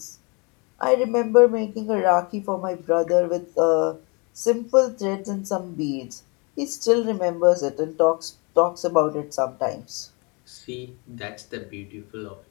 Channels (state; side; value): quieter; right; 30.7 dB